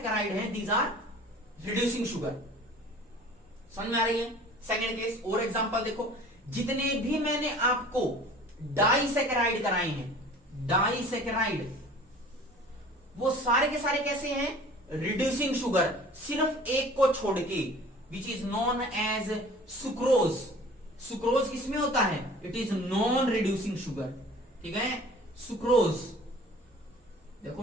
हैं दीज आर रिड्यूसिंग शुगर। समझ में आ रही है? सेकंड केस और एग्जांपल देखो, जितने भी मैंने आपको डाइसेकेराइड कराए हैं, डाइसेकेराइड, वो सारे के सारे कैसे हैं, रिड्यूसिंग शुगर, सिर्फ एक को छोड़ के, which is known as sucrose. Sucrose किसमें होता है, it is non reducing sugar. ठीक है, सुक्रोज। देखो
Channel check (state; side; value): normal; both; correlation 0.46